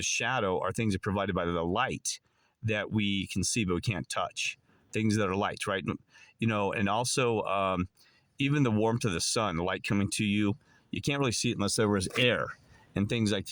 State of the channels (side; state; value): both; identical; correlation 1.00